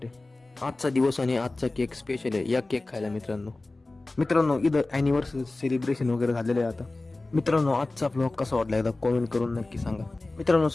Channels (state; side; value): quieter; right; 3.1 dB